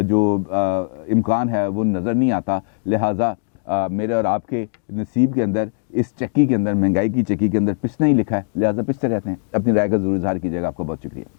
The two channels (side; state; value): right; silent; 66 dB below the other